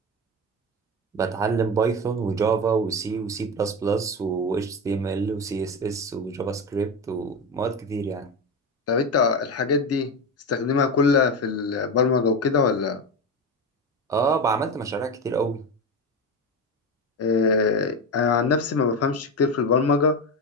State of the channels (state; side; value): normal; both; correlation 0.19